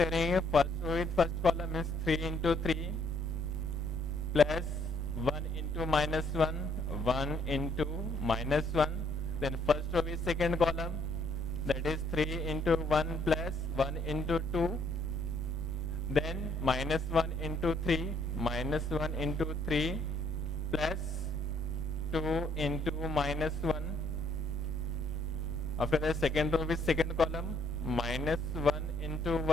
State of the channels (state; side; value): noise; left; rumble, 15 dB below the sound